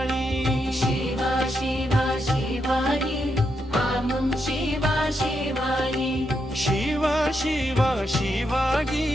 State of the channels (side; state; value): both; normal; correlation 0.82